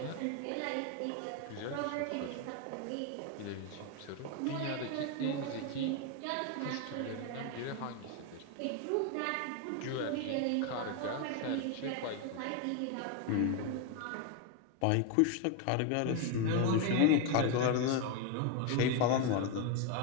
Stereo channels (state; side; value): different; both; correlation 0.01